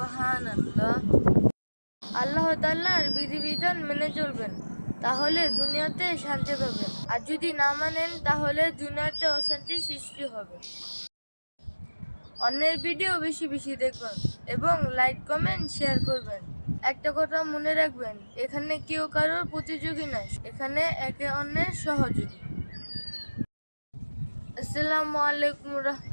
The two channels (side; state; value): both; inverted; correlation -1.00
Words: আল্লাহ তাআলার বিধিবিধান মেনে চলবেন, তাহলে দুনিয়াতে শান্তি পাবেন, আর যদি না মানেন তাহলে দুনিয়াতে অশান্তি সৃষ্টি হবে। অন্যের ভিডিও বেশি বেশি দেখবেন এবং লাইক কমেন্ট শেয়ার করবেন। একটা কথা মনে রাখবেন, এখানে কেউ কারোর প্রতিযোগী নয়, এখানে একে অন্যের সহযোগী। আসসালামু আলাইকুম